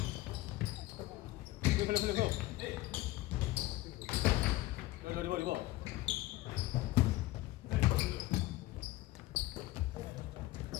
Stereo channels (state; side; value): quieter; right; 17.4 dB